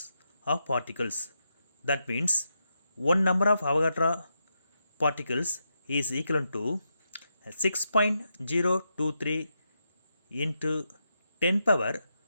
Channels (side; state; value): both; inverted; correlation -0.84